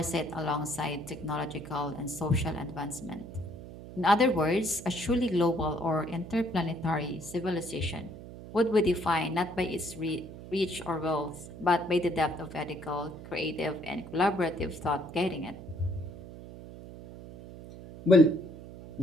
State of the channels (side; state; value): right; noise; hum, 14 dB below the sound